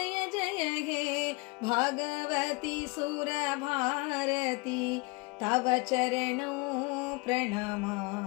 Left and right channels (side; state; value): right; quieter; 27.2 dB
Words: ಜಯ ಹೇ ಭಾಗವತಿ ಸುರ ಭಾರತಿ ತವ ಚರಣೌ